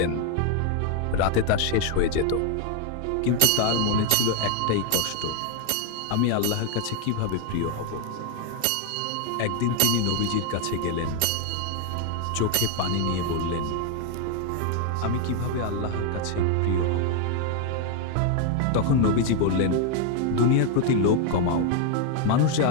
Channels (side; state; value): both; different; correlation 0.01